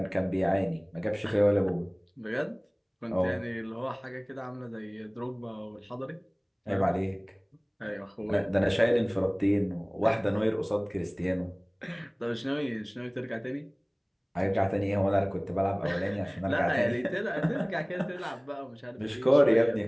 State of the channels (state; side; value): identical; both; correlation 1.00